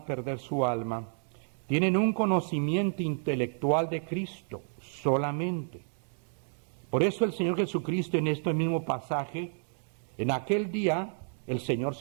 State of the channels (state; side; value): silent; left; digital silence